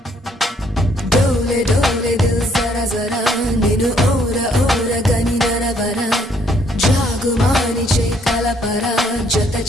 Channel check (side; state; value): both; normal; correlation 0.67